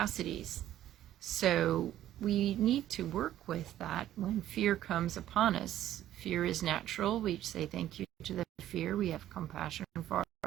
So we need to work with that when fear comes upon us. Fear is natural. We say thank you to the fear. We have compassion for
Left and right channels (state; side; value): quieter; left; 12.5 dB